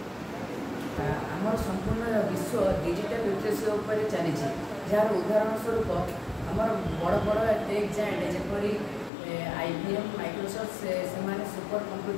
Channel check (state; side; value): drops out; right; at 9.1 s